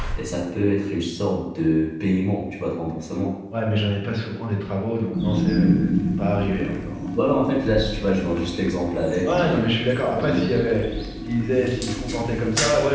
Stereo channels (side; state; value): both; identical; correlation 1.00